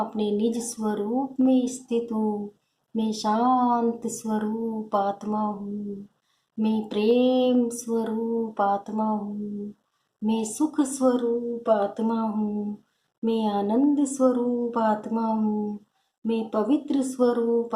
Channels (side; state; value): both; identical; correlation 1.00